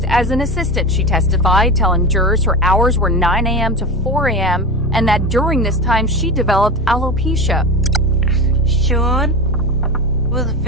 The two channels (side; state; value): both; normal; correlation 0.24